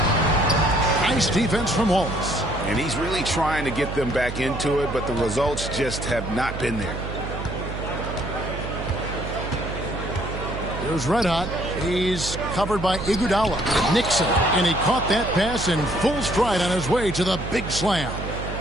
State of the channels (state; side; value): noise; right; hum, 7 dB below the sound